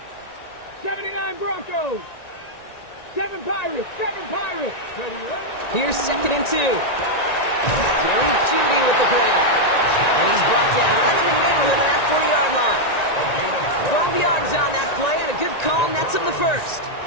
79 Broncos. 7 Pirates, 7 Pirates. Here's 2nd and 2. Jerry Jeudy with the grab. And he's brought down right in the neighborhood of that 40-yard line. 12 yards on that play, and a good call nets him the first.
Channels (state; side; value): late; right; 1.9 ms